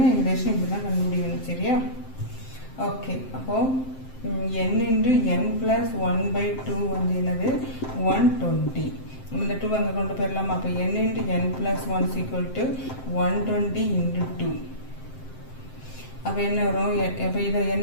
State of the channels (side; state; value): right; late; 7.7 ms